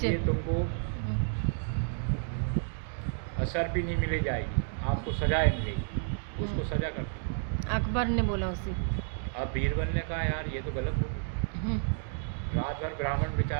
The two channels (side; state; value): left; silent; digital silence